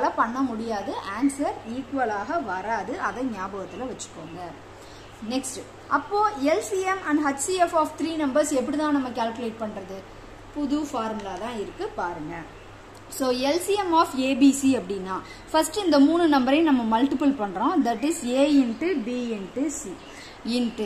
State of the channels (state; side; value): identical; both; correlation 1.00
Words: பண்ண முடியாது. ஆன்சர் ஈக்குவலாக வராது. அதை ஞாபகத்துல வச்சுக்கோங்க. நெக்ஸ்ட், அப்போ LCM and HCF of 3 numbers எப்படி தான் நம்ம கால்குலேட் பண்றது? புது ஃபார்முலா தான் இருக்கு, பாருங்க. So LCM of ABC அப்படின்னா ஃபர்ஸ்ட் இந்த 3 நம்பரையும் நம்ம மல்டிபிள் பண்றோம். That is A into B into C